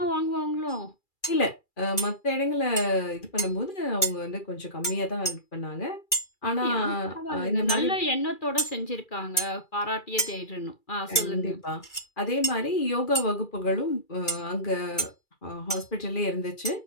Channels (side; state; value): right; late; 2.3 ms